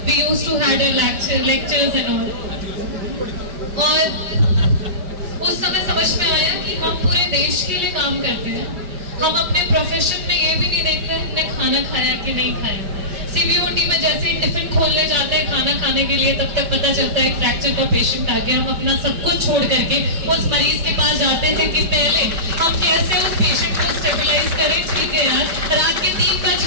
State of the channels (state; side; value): late; left; 5.1 ms